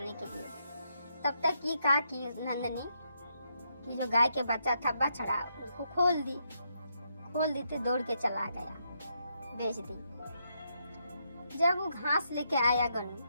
के लिए, तब तक ये कहा कि नंदनी कि जो गाय के बच्चा था बछड़ा, उसको खोल दी तो दौड़ के चला गया, बेच दी। जब वो घास लेके आया गनु,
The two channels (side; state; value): both; inverted; correlation -0.79